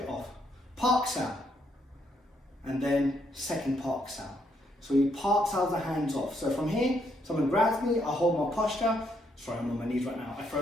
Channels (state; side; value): normal; both; correlation 0.74